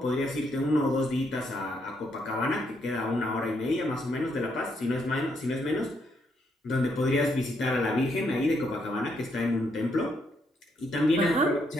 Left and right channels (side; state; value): both; normal; correlation 0.75